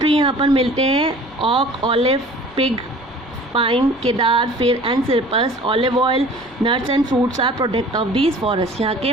यहाँ पर मिलते हैं ऑक, olive, pig, pine, cedar, fir and cypress. Olive oil, nuts and fruits are product of these forest. यहाँ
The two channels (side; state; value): left; noise; hum, 27 dB below the sound